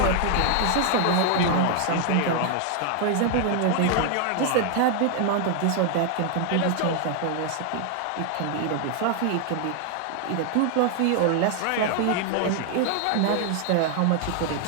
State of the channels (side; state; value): both; different; correlation 0.00